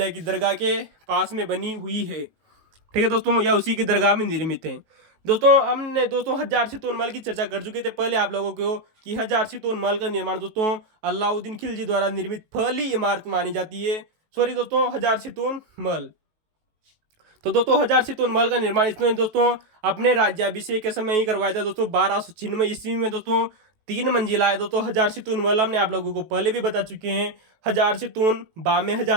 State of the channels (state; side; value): late; left; 19 ms